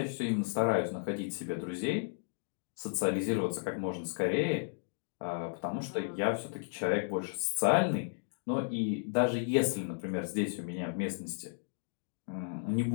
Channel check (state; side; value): silent; right; digital silence